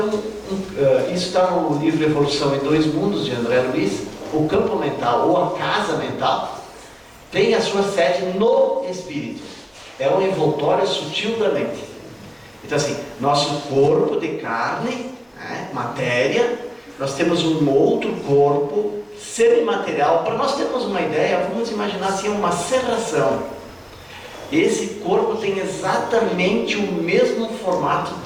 está no livro Evolução em Dois Mundos, de André Luiz. O campo mental, ou a casa mental, tem a sua sede no espírito. É um envoltório sutil da mente. Então assim, nosso corpo de carne, matéria, nós temos um outro corpo semimaterial. Para nós termos uma ideia, vamos imaginar assim, uma serração. Esse corpo tem exatamente o mesmo formato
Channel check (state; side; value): identical; both; correlation 1.00